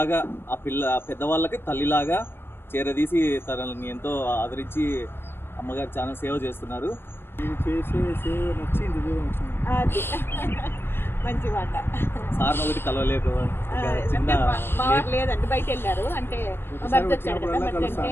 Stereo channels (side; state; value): right; late; 0.11 ms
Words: ఆ పెద్దవాళ్ళకి తల్లిలాగా చేరదీసి తనని ఎంతో ఆదరించి అమ్మగారు చాలా సేవ చేస్తున్నారు. మంచి మాట. సార్ని ఒకటి కలవలేదు, చిన్న లేదండి, బయట వెళ్ళారు. అంటే